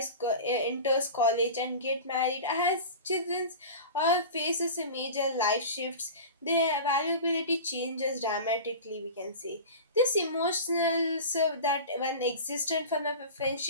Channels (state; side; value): inverted; both; correlation -0.33